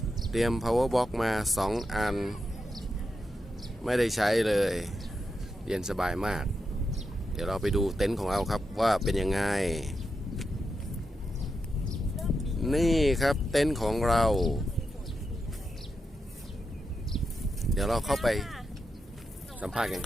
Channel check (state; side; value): normal; both; correlation 0.86